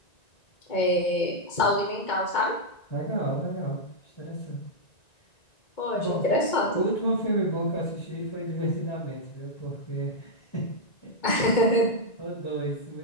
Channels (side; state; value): right; late; 1.9 ms